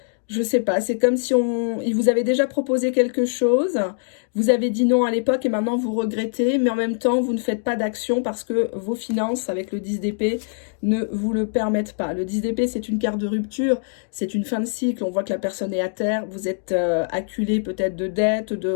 je sais pas, c'est comme si il vous avait déjà proposé quelque chose, vous avez dit non à l'époque et maintenant vous regrettez, mais en même temps vous ne faites pas d'action parce que vos finances avec le 10 d'épée ne vous le permettent pas. Le 10 d'épée c'est une carte de rupture, c'est une fin de cycle, on voit que la personne est à terre, vous êtes acculé peut-être de dettes, de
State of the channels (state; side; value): silent; right; digital silence